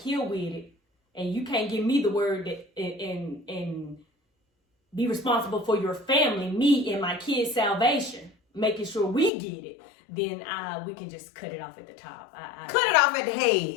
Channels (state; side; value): drops out; right; at 9.3 s